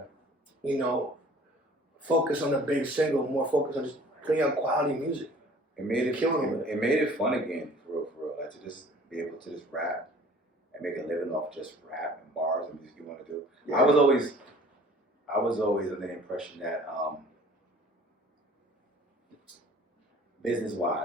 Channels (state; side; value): normal; both; correlation 0.50